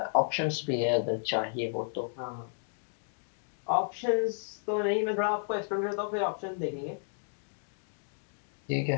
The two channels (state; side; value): silent; right; digital silence